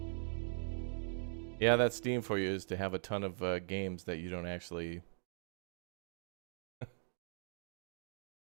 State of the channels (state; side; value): silent; left; digital silence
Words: Yeah, that's Steam for you, is to have a ton of games that you don't actually...